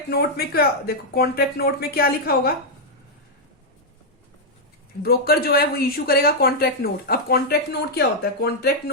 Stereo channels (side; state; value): both; normal; correlation -0.03